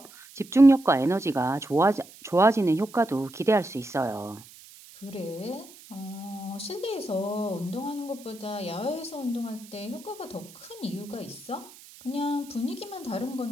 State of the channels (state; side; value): noise; right; hiss, 21 dB below the sound